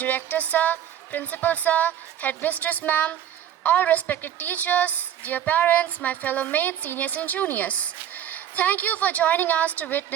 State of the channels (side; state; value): left; quieter; 10.4 dB